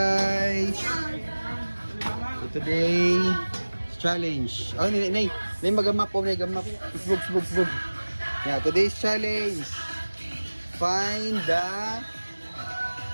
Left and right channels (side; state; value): both; inverted; correlation -1.00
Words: So today challenge. Oh, nay magamap po, nay gamap. Sbug. Yeah, today's challenge. Find the